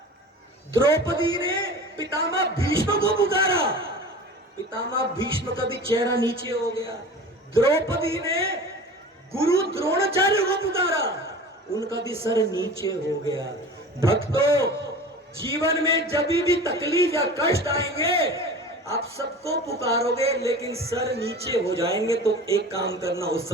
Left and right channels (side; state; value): both; normal; correlation 0.37